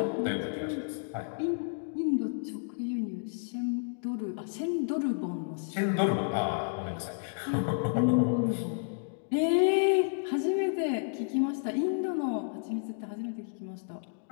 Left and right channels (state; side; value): silent; right; digital silence